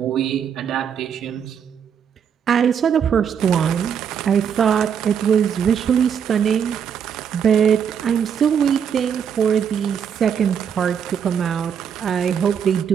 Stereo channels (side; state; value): left; quieter; 7.8 dB